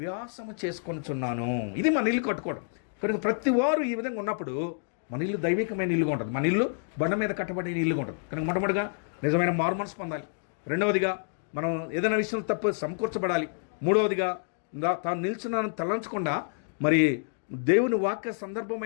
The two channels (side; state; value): right; silent; digital silence